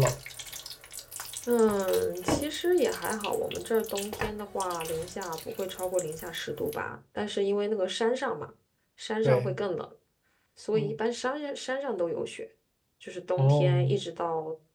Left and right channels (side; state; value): both; identical; correlation 1.00